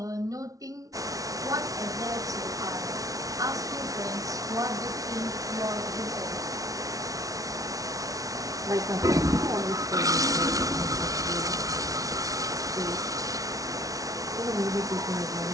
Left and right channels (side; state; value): left; late; 0.17 ms